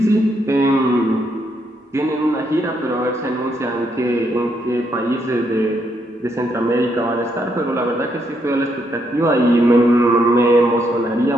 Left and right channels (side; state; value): both; normal; correlation 0.76